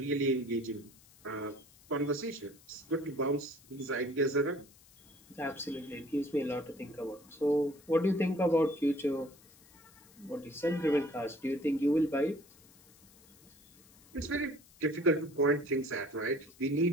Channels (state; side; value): noise; left; hiss, 26 dB below the sound